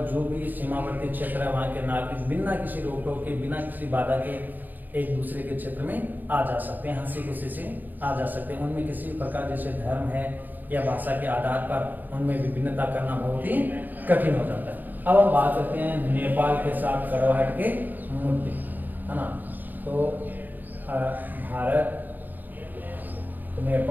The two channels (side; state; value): left; late; 0.088 ms